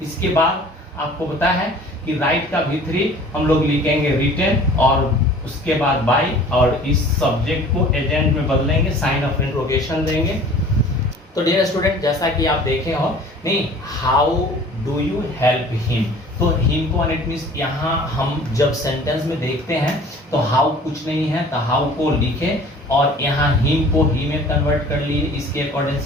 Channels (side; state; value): both; normal; correlation 0.48